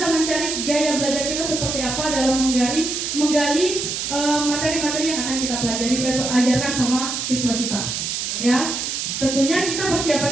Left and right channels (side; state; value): right; noise; hiss, 3 dB below the sound